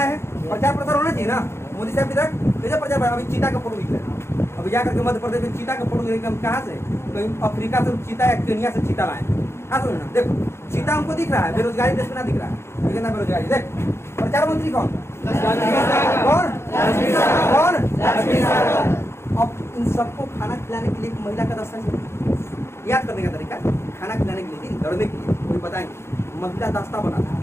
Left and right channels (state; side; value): late; right; 0.12 ms